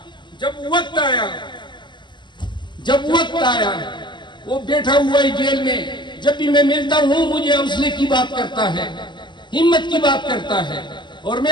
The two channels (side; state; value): right; late; 0.22 ms